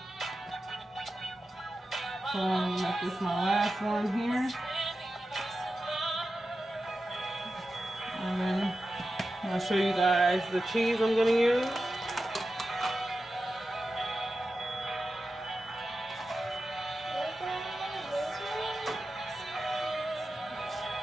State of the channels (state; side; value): normal; both; correlation 0.92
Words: So I'm gonna make this my last one here. And then I'll show you guys the cheese I'm gonna use.